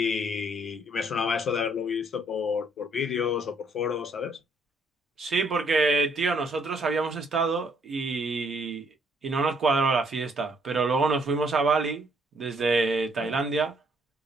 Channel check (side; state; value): both; normal; correlation 0.68